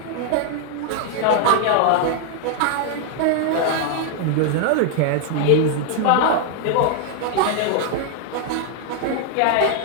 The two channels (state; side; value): different; both; correlation 0.00